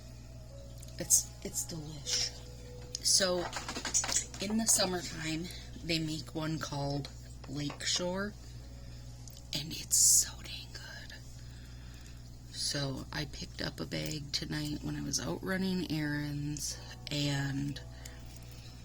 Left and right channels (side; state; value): both; identical; correlation 1.00